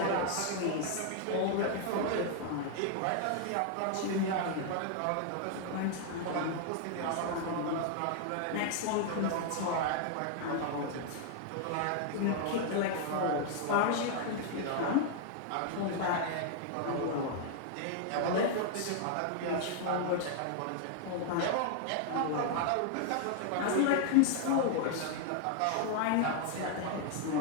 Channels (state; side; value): different; both; correlation 0.00